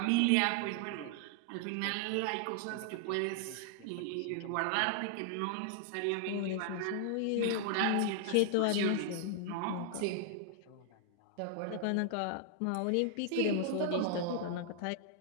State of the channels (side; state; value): both; different; correlation 0.00